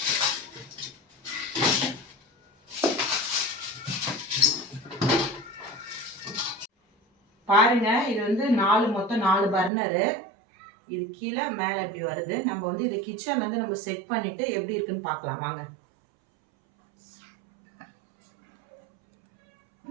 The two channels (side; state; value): left; drops out; at 9.7 s